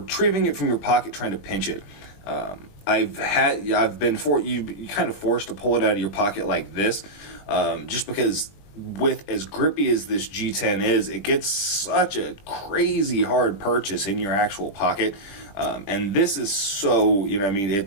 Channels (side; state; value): right; late; 20 ms